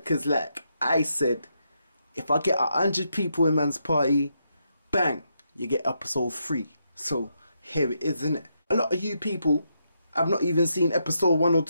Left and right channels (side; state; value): both; inverted; correlation -0.80